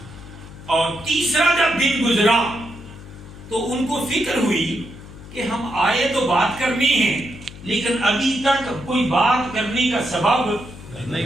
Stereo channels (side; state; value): left; noise; hum, 16 dB below the sound